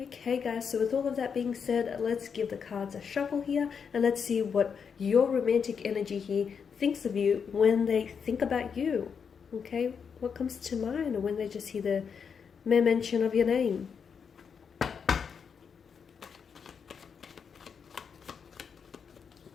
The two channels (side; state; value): right; quieter; 6.5 dB